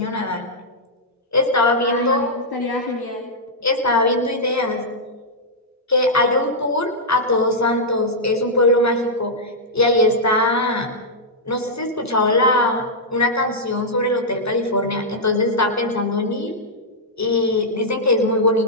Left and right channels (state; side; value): normal; both; correlation -0.08